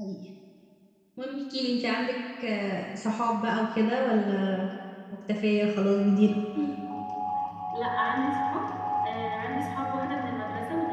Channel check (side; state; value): both; identical; correlation 1.00